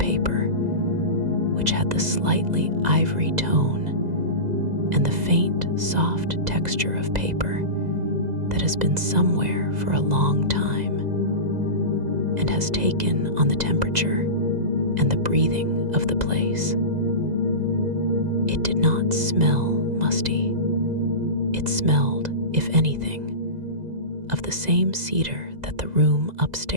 which had the slightly ivory tone and the faint, soft texture of paper that has been somewhere for a long time and has taken on the temperature and the breathing of the place. It did not smell musty. It smelled, if anything, of the same cedar that the room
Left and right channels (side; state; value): left; late; 2.0 ms